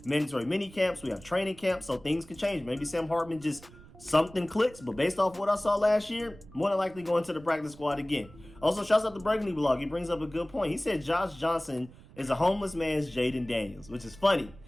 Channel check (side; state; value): right; noise; rumble, 21 dB below the sound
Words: mandatory mini camps, we have training camps, so things could change. Maybe Sam Hartman just something clicks, but based off what I saw last year, more than likely going to the practice squad again. Also, shouts out to Burgundy Blog. He brings up a good point. He said Josh Johnson is a homeless man's Jaden Daniels, which is funny.